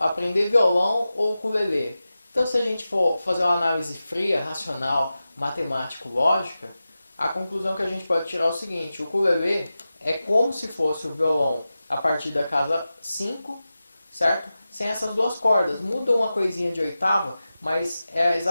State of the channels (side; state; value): both; inverted; correlation -0.94